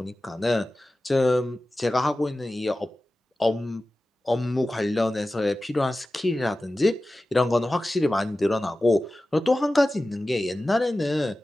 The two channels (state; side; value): normal; both; correlation 0.95